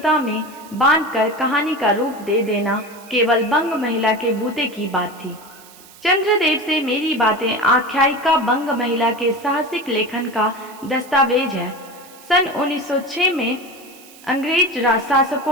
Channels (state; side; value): noise; right; hiss, 22 dB below the sound